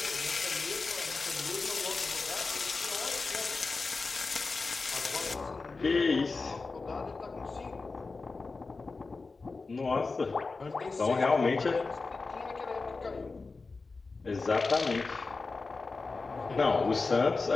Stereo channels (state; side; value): quieter; right; 4.0 dB